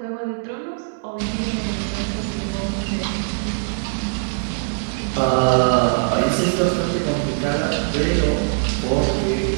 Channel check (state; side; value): silent; left; digital silence